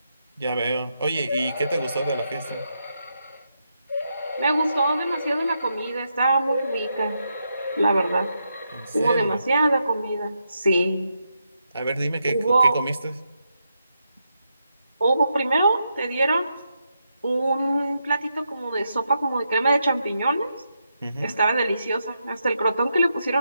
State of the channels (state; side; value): inverted; both; correlation -0.83